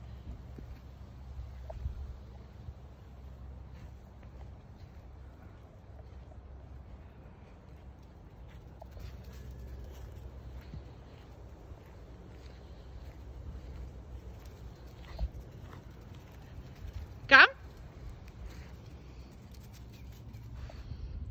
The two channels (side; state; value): both; identical; correlation 1.00